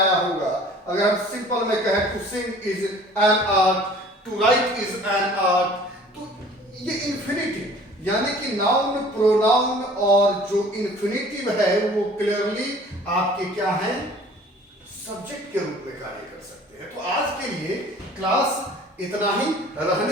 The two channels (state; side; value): normal; both; correlation 0.49